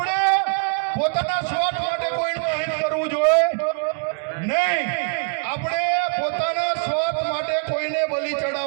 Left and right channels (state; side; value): quieter; left; 37.8 dB